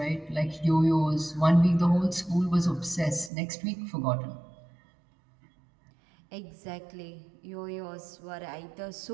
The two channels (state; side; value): drops out; left; at 3.3 s